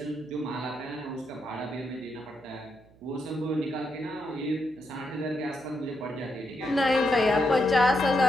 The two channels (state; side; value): noise; right; hum, 26 dB below the sound